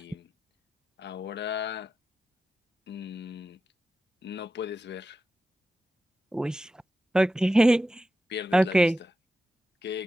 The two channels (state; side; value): normal; both; correlation 0.92